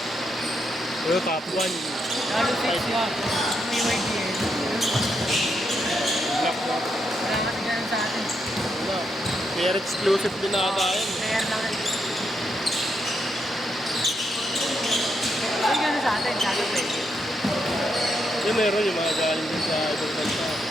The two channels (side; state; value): both; normal; correlation 0.80